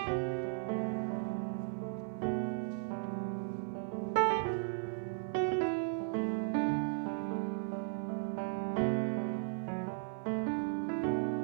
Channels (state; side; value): silent; left; 54 dB below the other